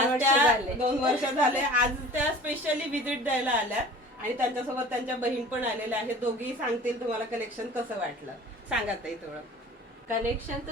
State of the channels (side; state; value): both; normal; correlation 0.43